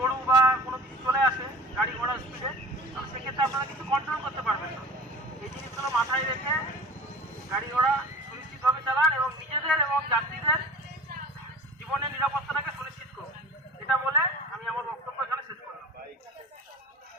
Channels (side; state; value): both; normal; correlation 0.41